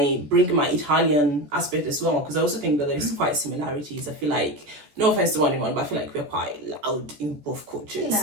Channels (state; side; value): late; left; 14 ms